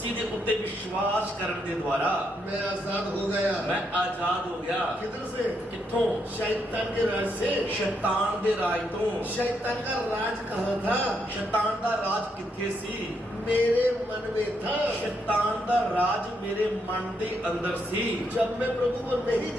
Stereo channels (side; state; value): both; normal; correlation 0.78